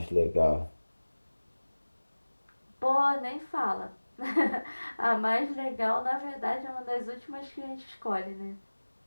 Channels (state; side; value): inverted; both; correlation -1.00